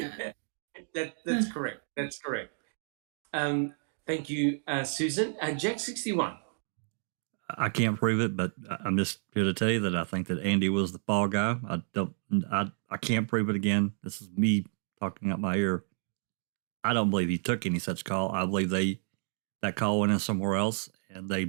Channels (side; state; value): left; silent; 57 dB below the other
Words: That's correct. That's correct. Thank you, Susan. Jack 61. I can't prove it, but I'm just here to tell you that I think that Andy was the fall guy. I can't prove it again. This is me talking out my ear. I don't believe he took any such call. I believe that call went in somewhere else and they